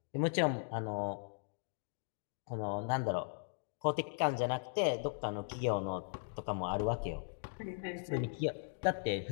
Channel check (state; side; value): silent; right; digital silence